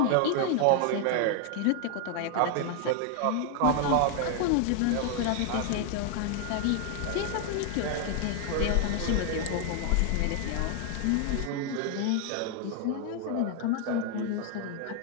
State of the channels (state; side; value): different; both; correlation 0.00